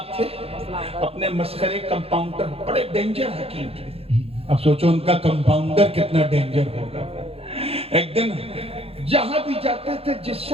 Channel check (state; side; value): late; left; 0.28 ms